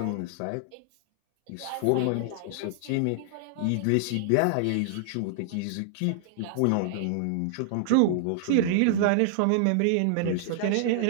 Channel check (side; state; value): both; different; correlation -0.01